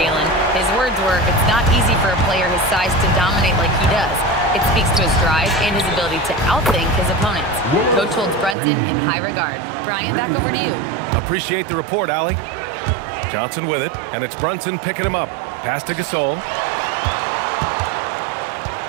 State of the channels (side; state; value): left; drops out; at 8.6 s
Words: His words were, it's not easy for a player his size to dominate like he does. It speaks to his drive and his ability to outthink his opponents. Coach holds Brunson in high regard. Brian, back over to you. Appreciate the report, Allie. Johnson with it, and it's Brunson picking him up. Pass to Gasol.